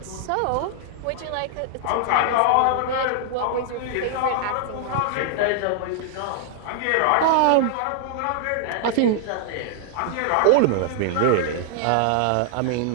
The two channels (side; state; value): both; different; correlation -0.01